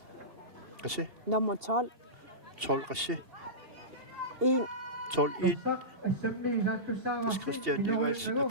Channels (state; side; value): late; left; 2.8 ms